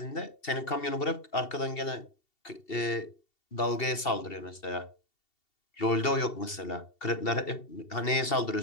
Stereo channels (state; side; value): late; right; 2.7 ms